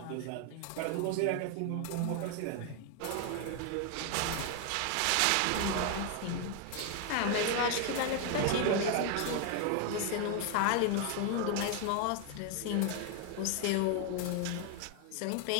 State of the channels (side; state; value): both; different; correlation 0.01